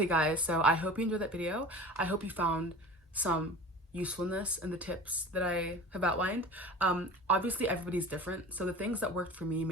guys, so I hope you enjoyed that video. I hope you found some usefulness in the tips that I have outlined. Obviously everybody's different, so the things that worked for me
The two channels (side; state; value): both; normal; correlation 0.38